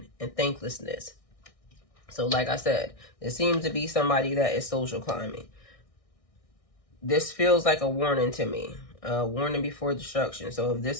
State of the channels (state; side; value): late; right; 1.6 ms